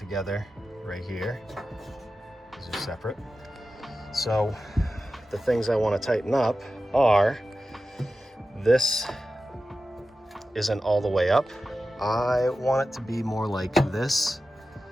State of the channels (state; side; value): normal; both; correlation 0.93